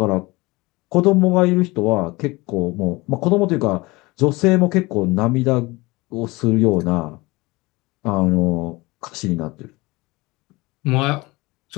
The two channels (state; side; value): quieter; right; 22.7 dB